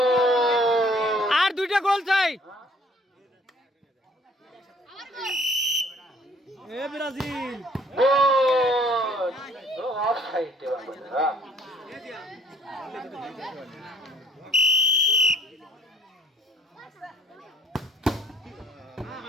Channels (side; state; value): both; normal; correlation 0.59